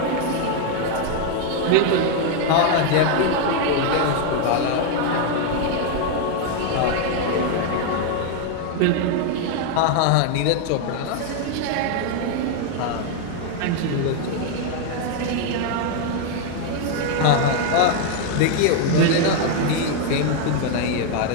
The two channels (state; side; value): different; both; correlation 0.01